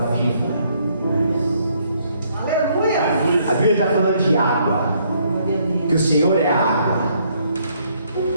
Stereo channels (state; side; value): inverted; both; correlation -0.68